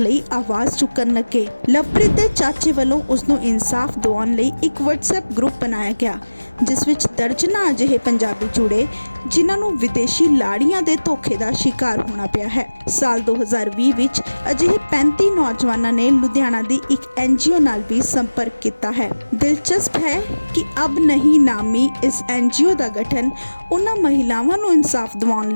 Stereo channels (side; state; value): both; inverted; correlation -1.00